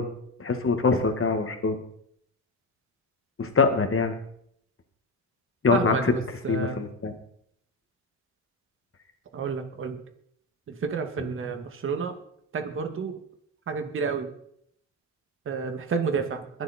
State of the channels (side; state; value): both; normal; correlation 0.15